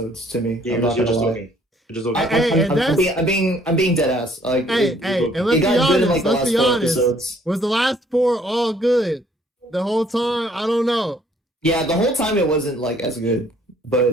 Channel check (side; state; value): both; normal; correlation 0.62